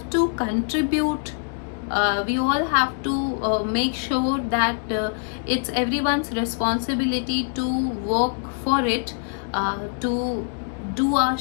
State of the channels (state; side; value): silent; right; digital silence